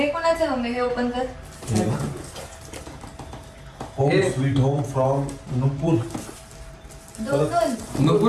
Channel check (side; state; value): both; identical; correlation 1.00